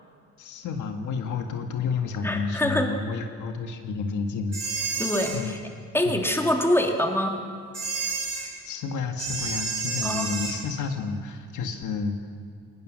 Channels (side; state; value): both; normal; correlation 0.50